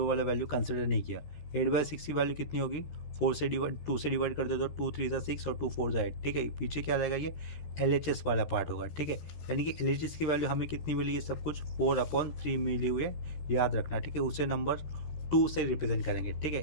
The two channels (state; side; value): late; right; 13 ms